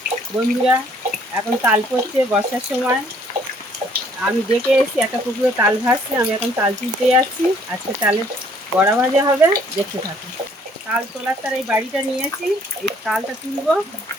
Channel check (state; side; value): normal; both; correlation 0.62